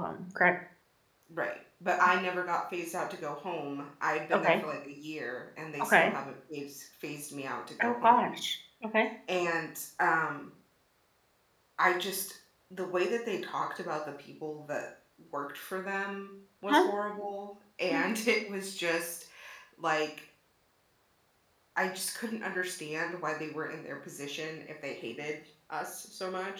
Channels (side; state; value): both; identical; correlation 1.00